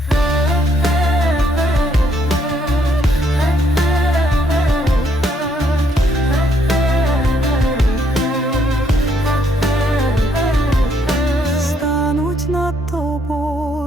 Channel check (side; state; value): both; normal; correlation 0.71